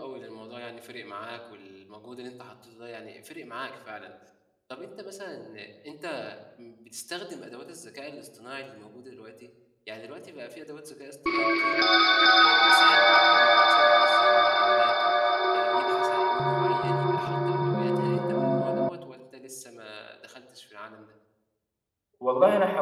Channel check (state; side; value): identical; both; correlation 1.00